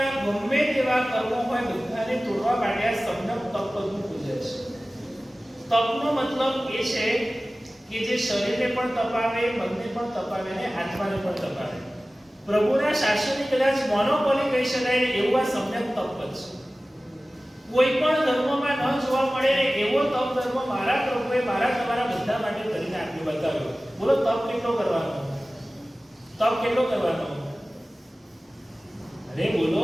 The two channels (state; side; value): normal; both; correlation 0.97